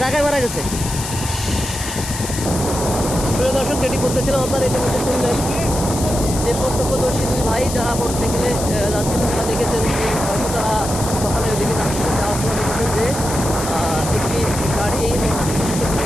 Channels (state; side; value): noise; left; hiss, 7 dB below the sound